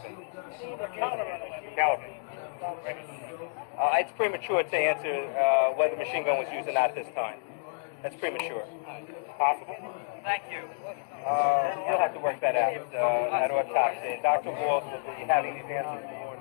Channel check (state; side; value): silent; right; digital silence